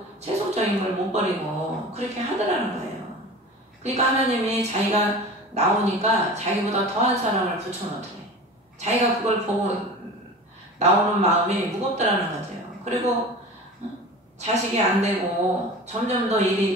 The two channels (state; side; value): normal; both; correlation 0.36